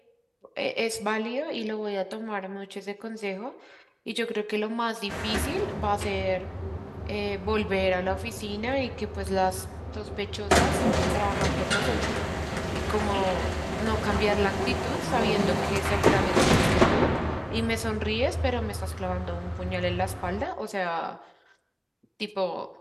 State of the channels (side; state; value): both; identical; correlation 1.00